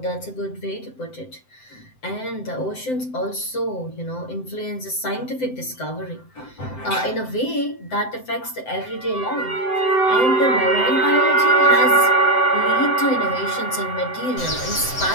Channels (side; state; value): right; late; 7.8 ms